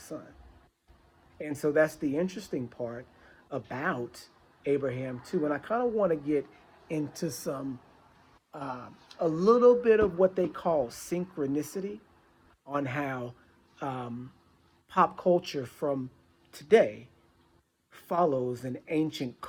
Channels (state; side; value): identical; both; correlation 1.00